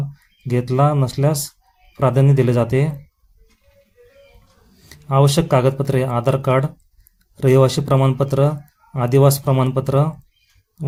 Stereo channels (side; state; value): both; identical; correlation 1.00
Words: घेतला नसल्यास प्राधान्य दिले जाते. आवश्यक कागदपत्रे: आधार कार्ड, रहिवासी प्रमाणपत्र, आदिवास प्रमाणपत्र,